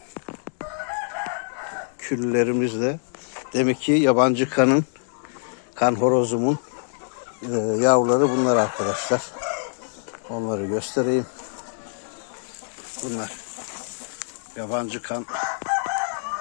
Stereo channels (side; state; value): right; silent; 62 dB below the other